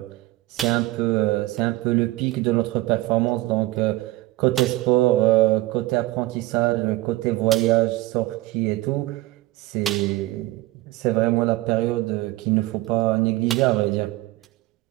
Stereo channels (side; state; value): left; quieter; 18.2 dB